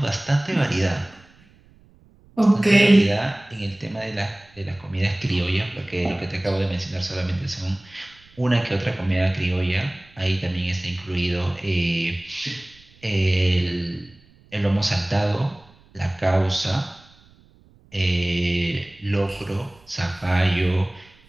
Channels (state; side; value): noise; right; rumble, 28 dB below the sound